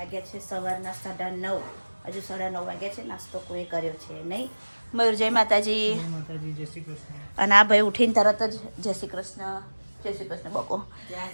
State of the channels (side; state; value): both; inverted; correlation -1.00